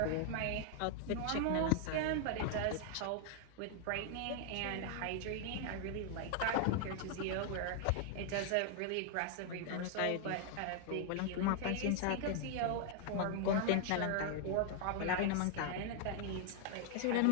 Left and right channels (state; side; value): different; both; correlation 0.00